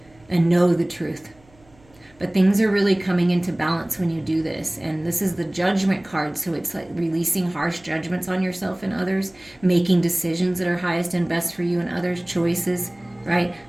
and know the truth. But things are really coming into balance when you do this. And this is the Judgment card. So it's like releasing harsh judgments on yourself and others, making decisions that are highest and best for you and others, choices, right?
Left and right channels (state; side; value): noise; right; hum, 29 dB below the sound